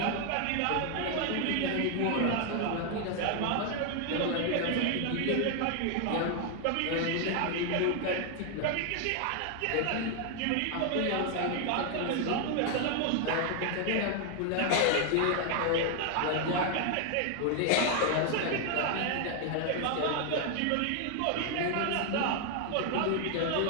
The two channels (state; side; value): different; both; correlation 0.00